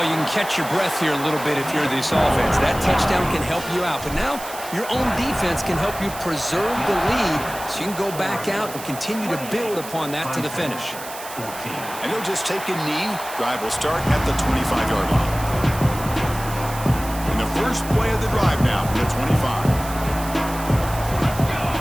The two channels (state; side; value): noise; right; hiss, 13 dB below the sound